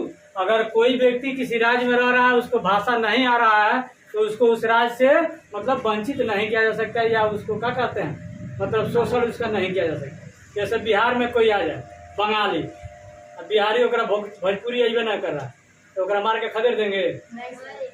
अगर कोई व्यक्ति किसी राज्य में रह रहा है, उसको भाषा नहीं आ रहा है, तो उसको उस राज्य से मतलब वंचित नहीं किया जा सकता, या उसको क्या कहते हैं, मतलब शोषण उसका नहीं किया जा सकता। जैसे बिहार में कोई आ जाए बंगाली, अब बिहारी ओकरा भोजपुरी अइबे ना कर रहा, तो ओकरा मार के खदेड़ देंगे,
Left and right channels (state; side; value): identical; both; correlation 1.00